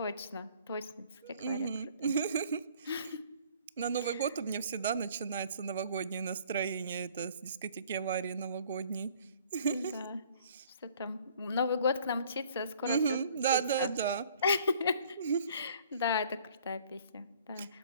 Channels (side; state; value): both; inverted; correlation -0.56